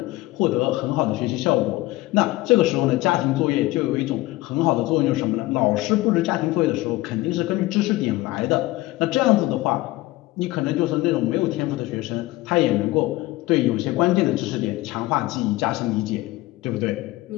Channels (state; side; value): quieter; right; 18.8 dB